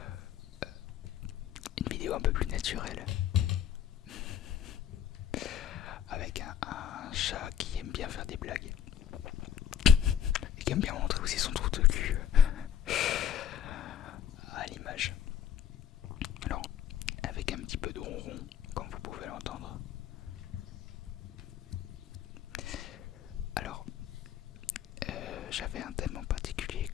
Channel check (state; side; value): quieter; right; 9.3 dB